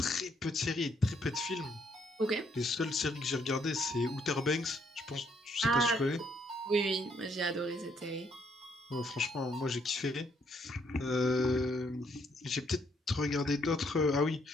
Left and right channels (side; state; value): both; normal; correlation 0.70